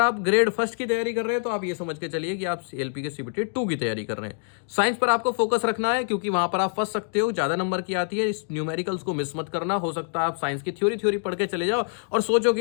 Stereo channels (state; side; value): silent; right; 61 dB below the other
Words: ग्रेड फर्स्ट की तैयारी कर रहे हैं तो आप ये समझ के चलिए कि आप एएलपी के सीबीटी 2 की तैयारी कर रहे हैं। साइंस पर आपको फोकस रखना है क्योंकि वहां पर आप फंस सकते हो, ज़्यादा नंबर की आती है। इस न्यूमेरिकल्स को मिस मत करना। हो सकता है आप साइंस की थ्योरी पढ़ के चले जाओ और सोचो